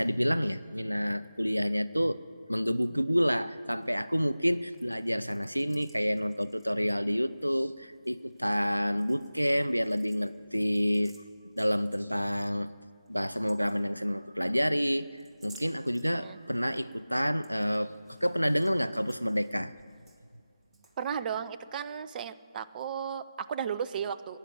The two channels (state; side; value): inverted; both; correlation -0.96